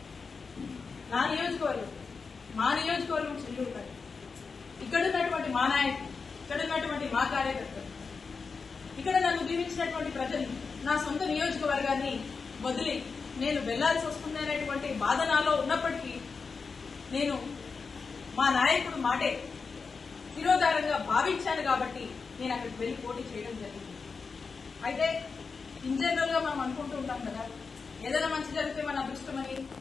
మా నియోజకవర్గం చెల్లూరుపల్లి, ఇక్కడ ఉన్నటువంటి మా నాయకులు, ఇక్కడ ఉన్నటువంటి మా కార్యకర్తలు, ఇక్కడ నన్ను దీవించినటువంటి ప్రజలు నా సొంత నియోజకవర్గాన్ని వదిలి నేను వెళ్లాల్సి వస్తుందనేటువంటి బాధ నాలో ఉన్నప్పటికీ నేను మా నాయకుడు మాటే శిరోధారంగా భావించాను కాబట్టి నేను అక్కడికి వెళ్లి పోటీ చేయడం జరిగింది. అయితే ఇన్ జనరల్ గా మనం అనుకుంటూ ఉంటాం కదా, ఏదైనా మంచి జరిగితే మన అదృష్టమని,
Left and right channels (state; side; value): quieter; right; 4.9 dB